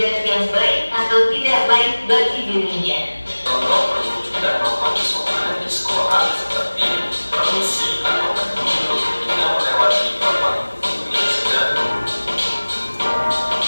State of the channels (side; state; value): both; inverted; correlation -1.00